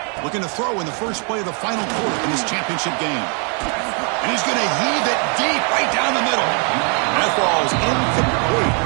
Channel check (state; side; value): quieter; left; 38.7 dB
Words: Looking to throw in the first play of the final quarter in this championship game. And he's going to heave it deep right down the middle. And that ball is incomplete.